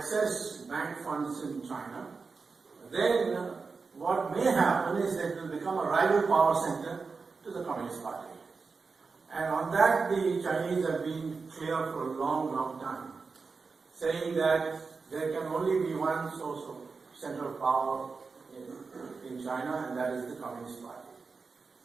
bank funds in China, then what may happen is that it will become a rival power center to the Communist Party. And on that, the Chinese have been clear for a long, long time, saying that there can only be one source of center of power in China, and that is the Communist Party.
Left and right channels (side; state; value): left; quieter; 4.6 dB